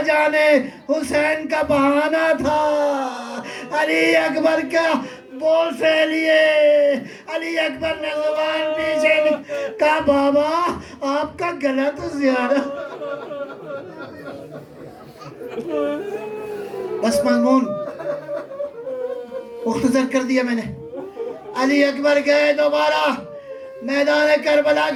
جانے حسین کا بہانہ تھا، علی اکبر کا بول سے لیے، علی اکبر نے زبان پیچھے کہا بابا آپ کا گلا تو زیادہ۔ بس مضمون مختصر کر دیا میں نے۔ علی اکبر گئے دوبارہ میدان کربلا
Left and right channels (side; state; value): both; identical; correlation 1.00